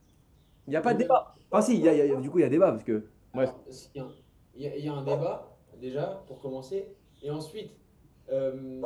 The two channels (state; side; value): identical; both; correlation 1.00